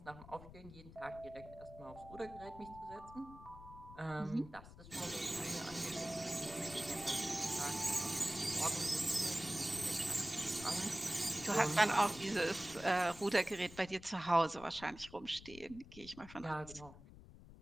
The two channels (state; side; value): noise; left; rumble, 17 dB below the sound